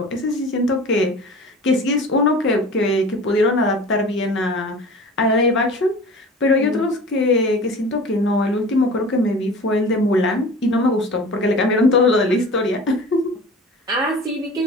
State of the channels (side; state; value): both; normal; correlation 0.39